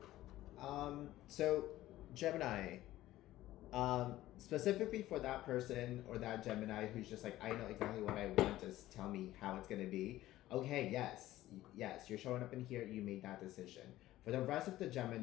So Gemini, specifically for that person or that Gemini who's just like, I know exactly what I want, just tell me how it's gonna be. Okay, yes, you're showing up in here, you made that decision. For the rest of the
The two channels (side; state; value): right; quieter; 15.3 dB